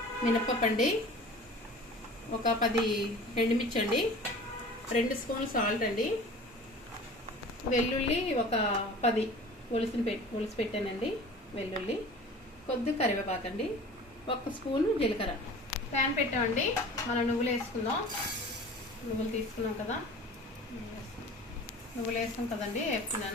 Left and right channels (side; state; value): both; normal; correlation 0.42